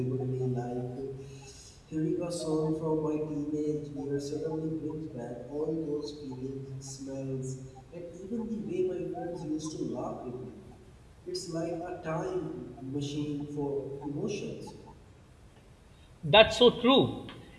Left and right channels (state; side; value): identical; both; correlation 1.00